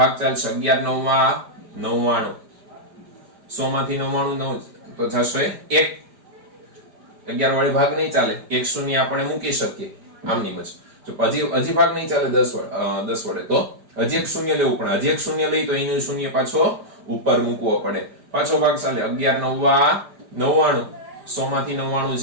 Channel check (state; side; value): late; left; 4.9 ms